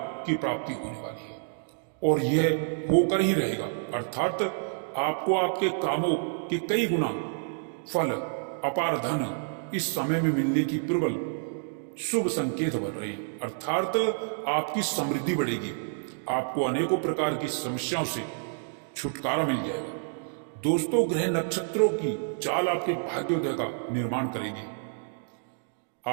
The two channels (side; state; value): left; silent; digital silence